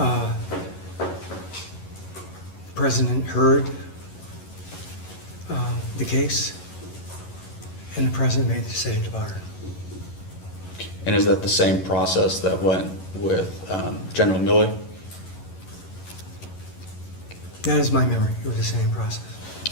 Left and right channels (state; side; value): late; right; 11 ms